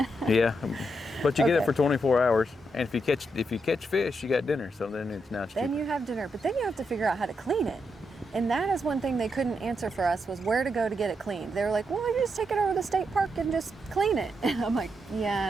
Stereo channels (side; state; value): both; normal; correlation 0.82